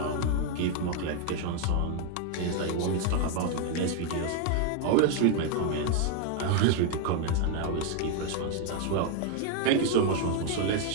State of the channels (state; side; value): different; both; correlation 0.00